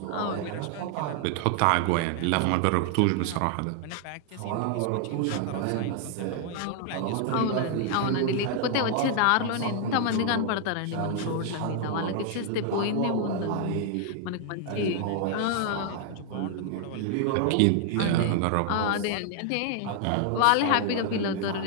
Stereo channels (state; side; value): different; both; correlation 0.00